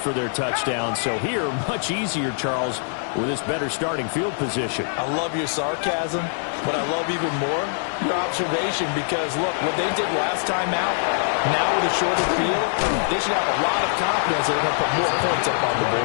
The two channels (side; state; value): right; silent; digital silence